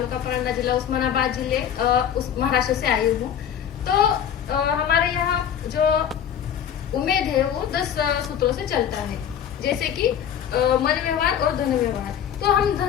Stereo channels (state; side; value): quieter; right; 9.1 dB